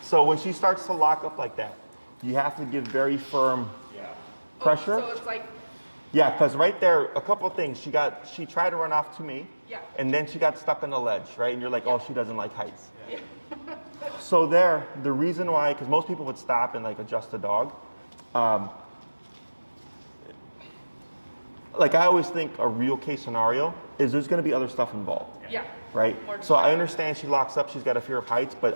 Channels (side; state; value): both; inverted; correlation -1.00